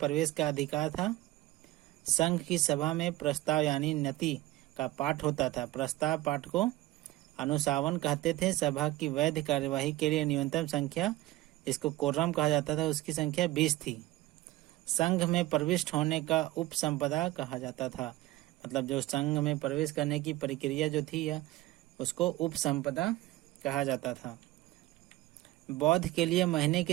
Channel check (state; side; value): quieter; left; 17.3 dB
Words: का अधिकार था। संघ की सभा में प्रस्ताव यानी नति का पाठ होता था। प्रस्ताव पाठ को अनुशासन कहते थे। सभा की वैध कार्यवाही के लिए न्यूनतम संख्या, जिसको कोरम कहा जाता था, उसकी संख्या 20 थी। संघ में प्रविष्ट होने का उपसंपदा कहा जाता था। मतलब जो संघ में प्रवेश करने की प्रक्रिया जो थी या उसको उपसंपदा कहा जाता था। बौद्ध के लिए महीने